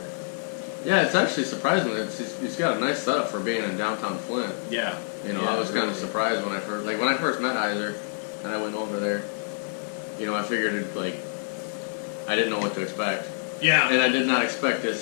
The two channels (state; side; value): silent; right; digital silence